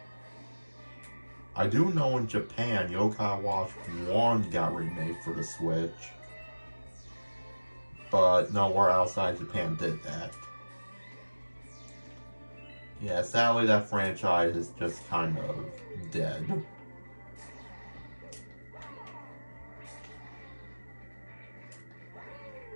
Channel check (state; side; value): inverted; both; correlation -1.00